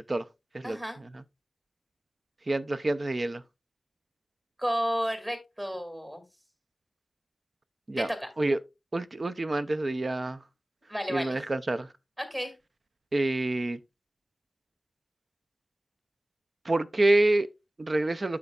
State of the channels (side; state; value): both; normal; correlation 0.98